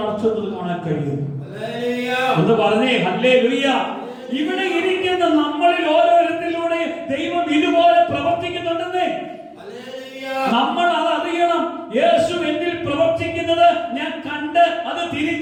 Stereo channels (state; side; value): identical; both; correlation 1.00